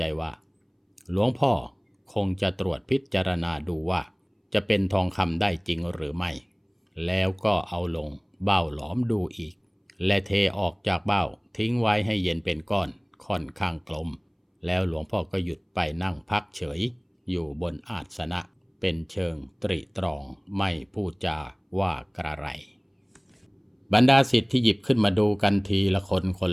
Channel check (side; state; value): both; identical; correlation 1.00